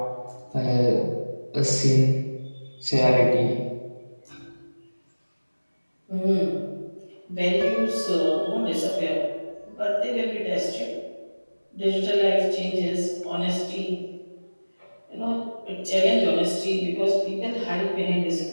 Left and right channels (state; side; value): inverted; both; correlation -1.00